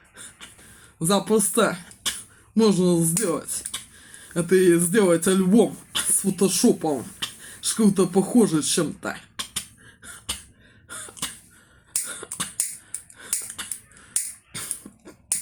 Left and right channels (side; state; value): both; identical; correlation 1.00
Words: Запросто можно сделать. Это и сделать альбом с фотошопом. Что-то похоже чем-то.